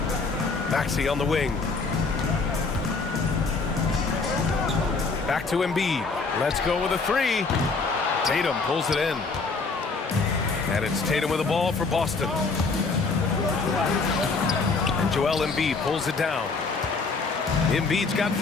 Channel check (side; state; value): right; quieter; 4.2 dB